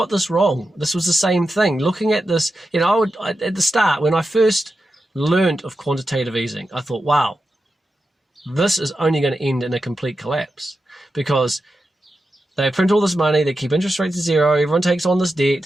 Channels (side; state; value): both; normal; correlation 0.90